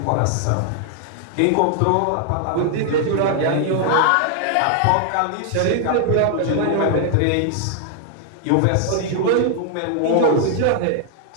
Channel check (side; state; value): both; different; correlation 0.00